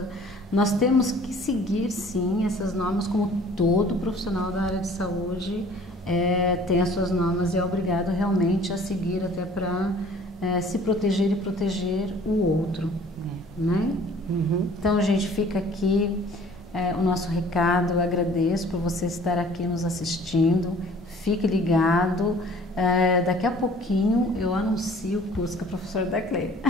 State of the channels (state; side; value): normal; both; correlation 0.52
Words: Nós temos que seguir, sim, essas normas, como todo profissional da área de saúde tem as suas normas e é obrigado realmente a seguir até para se proteger e proteger o outro, né? Uhum. Então, gente, fica aqui o nosso recado. Eu agradeço por você estar aqui nos assistindo. Fique ligado. Daqui a pouquinho eu anuncio o curso com a professora Daclé.